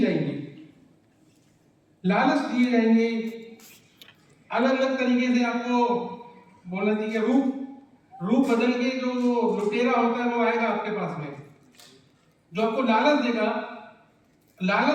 जाएंगी, लालच दिए जाएंगे, अलग अलग तरीके से आपको बोलना चाहिए रूप बदल के जो लुटेरा होता है वो आएगा आपके पास में, जो आपको लालच देगा।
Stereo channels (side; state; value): both; identical; correlation 1.00